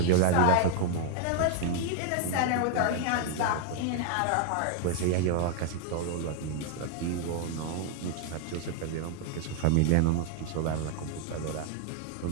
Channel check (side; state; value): both; different; correlation 0.00